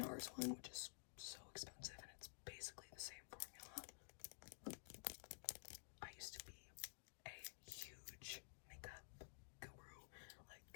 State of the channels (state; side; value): silent; right; digital silence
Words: one, which is so expensive, and it's basically the same formula. I used to be a huge makeup guru,